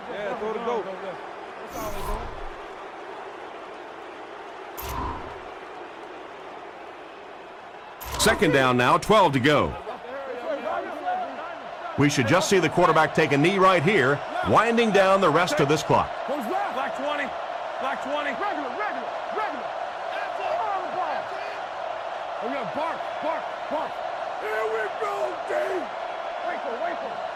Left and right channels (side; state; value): both; identical; correlation 1.00